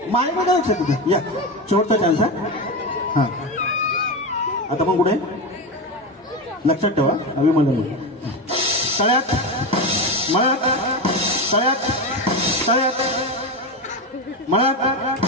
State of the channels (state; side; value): normal; both; correlation 0.17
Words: माय बघा लक्षात तिथं या शेवटचा चान्स आहे. हा आता पण कुठे लक्षात ठेवा. अभिमन्यू तळ्यात मळ्यात तळ्यात तळ्यात मळ्यात